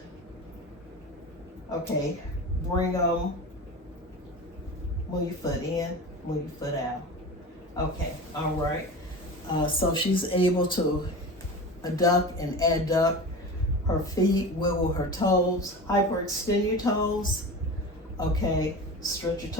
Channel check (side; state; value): both; normal; correlation 0.31